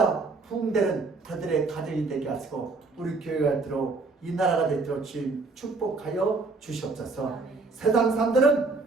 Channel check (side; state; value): left; quieter; 3.8 dB